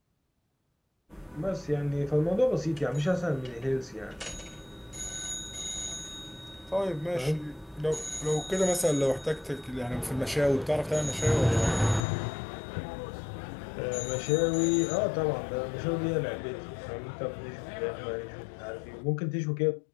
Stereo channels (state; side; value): drops out; right; at 12.1 s